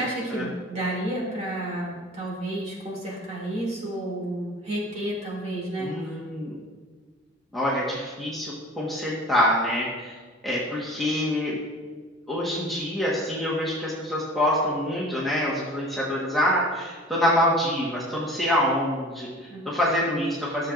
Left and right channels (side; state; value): both; normal; correlation 0.42